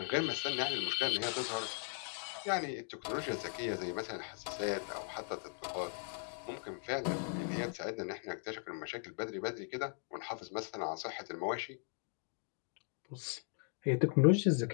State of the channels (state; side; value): silent; right; 52 dB below the other